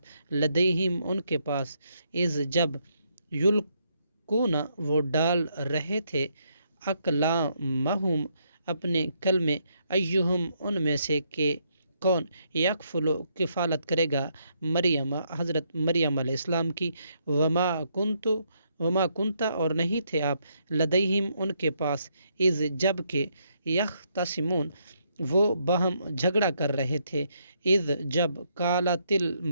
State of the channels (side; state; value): both; inverted; correlation -0.75